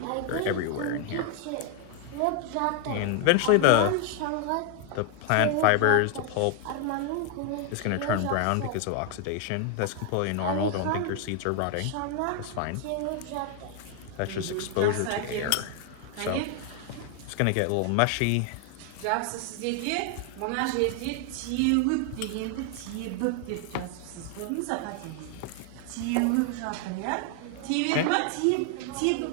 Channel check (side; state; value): both; different; correlation 0.00